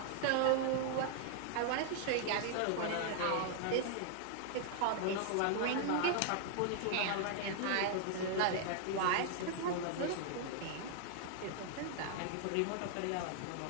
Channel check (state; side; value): different; both; correlation 0.00